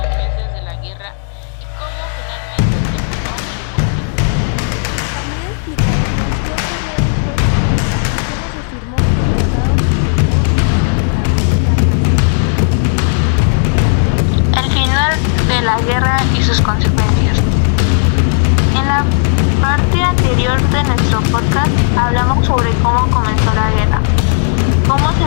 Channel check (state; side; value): silent; right; digital silence